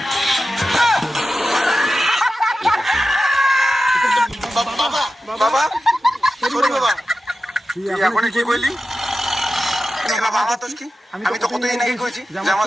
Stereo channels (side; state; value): both; normal; correlation 0.93